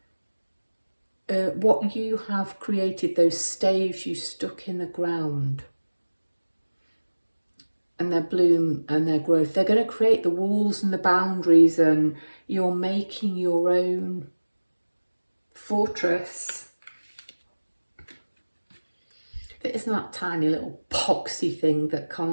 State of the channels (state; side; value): inverted; both; correlation -1.00